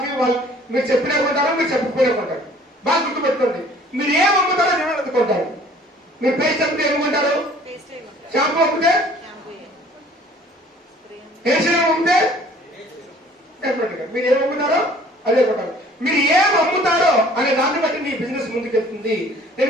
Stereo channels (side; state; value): both; normal; correlation 0.53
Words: వాళ్ళు మీరు చెప్పినా కొంటారు, మీరు చెప్పకపోయినా కొంటారు. బాగా గుర్తుపెట్టుకోండి. మీరు ఏం అమ్ముతారో జనాలు అందుకుంటారు. మీరు పేస్ట్ అమ్మితే ఏమనుకుంటారు? షాంపూ అమ్మితే, హెయిర్ సీరం అమ్మితే డెఫినెట్ గా మీరు ఏం అమ్ముతారో అదే కొంటారు. మీరు ఏం అమ్ముతారో అనే దాన్ని బట్టి మీ బిజినెస్ ముందుకెళ్తుంది. నేను